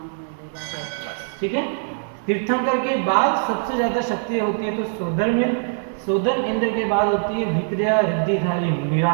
ठीक है, तीर्थंकर के बाद सबसे ज़्यादा शक्ति होती है तो सोदरमिंद्र। सोदरमिंद्र के बाद होती है विक्रिया रिद्धिधारी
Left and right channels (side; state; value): left; silent; digital silence